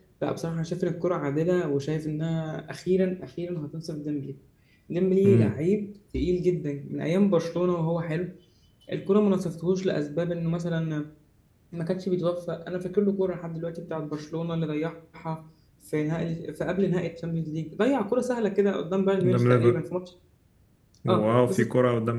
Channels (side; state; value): both; identical; correlation 1.00